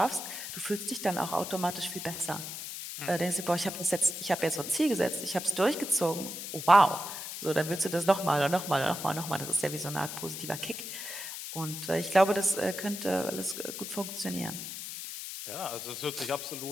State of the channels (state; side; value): noise; left; hiss, 7 dB below the sound